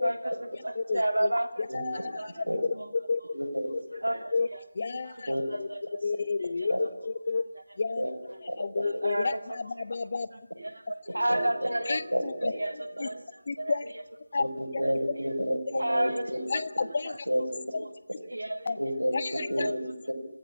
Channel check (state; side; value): inverted; both; correlation -0.96